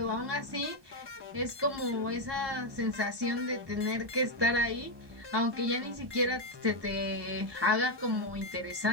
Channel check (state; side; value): late; left; 1.2 ms